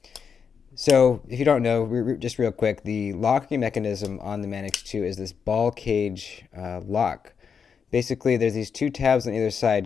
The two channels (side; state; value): right; quieter; 6.5 dB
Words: So if you don't know, just real quick, the locking mechanism on the Manix 2 is this ball cage lock. Basically, there's these two tabs on either